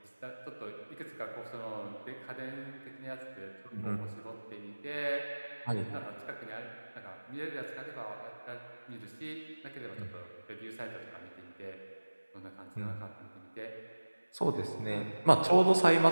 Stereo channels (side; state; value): both; inverted; correlation -1.00